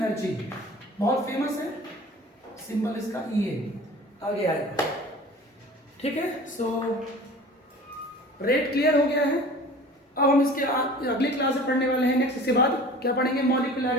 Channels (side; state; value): both; normal; correlation 0.42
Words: बहुत फेमस है, सिंबल इसका EA आगे आएगा, ठीक है। सो रेट क्लियर हो गया है। अब हम इसके अगली क्लास में पढ़ने वाले हैं नेक्स्ट, इसके बाद क्या पढ़ेंगे,